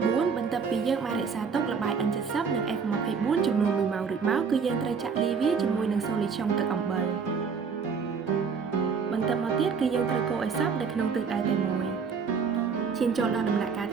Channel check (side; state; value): left; quieter; 5.8 dB